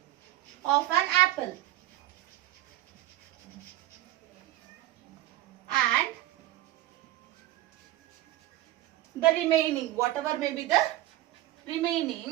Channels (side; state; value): left; quieter; 15.3 dB